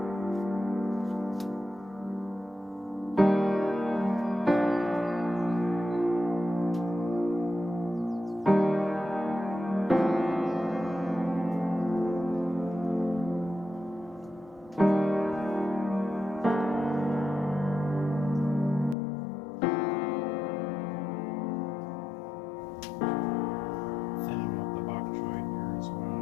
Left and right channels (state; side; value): drops out; right; at 18.9 s